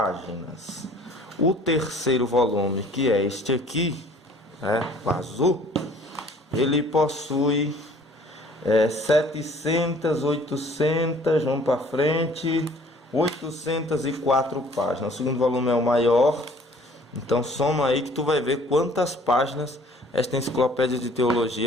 O terceiro volume, que é este aqui, o azul, ele possui 700, 800, vamos para frente, 804 páginas. O segundo volume é o maior, Então soma aí que tu vai ver quantas páginas esta enciclopédia de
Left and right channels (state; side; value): normal; both; correlation 0.54